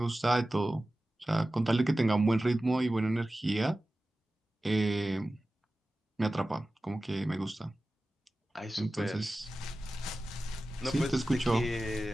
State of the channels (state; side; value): normal; both; correlation 0.95